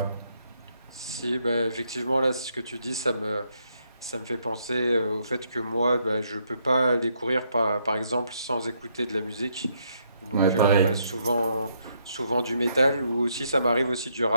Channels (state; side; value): inverted; both; correlation -0.73